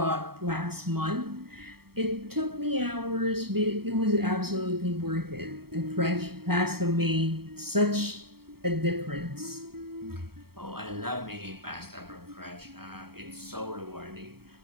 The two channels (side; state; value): left; late; 0.95 ms